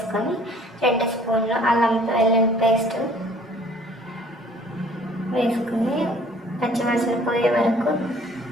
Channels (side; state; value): both; normal; correlation 0.55